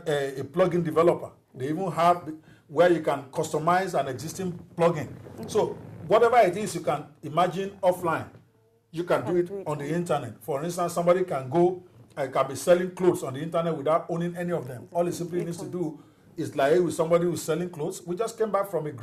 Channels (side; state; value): both; identical; correlation 1.00